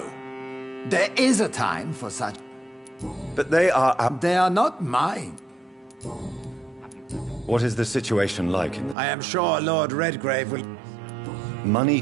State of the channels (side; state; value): left; drops out; at 9.0 s